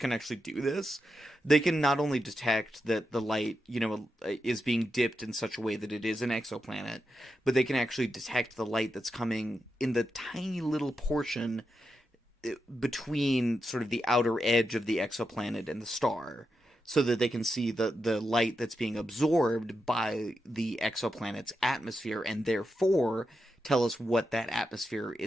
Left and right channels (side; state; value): both; normal; correlation 0.87